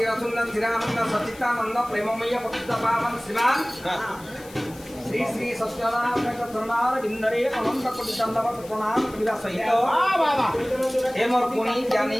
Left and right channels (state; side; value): noise; left; hiss, 21 dB below the sound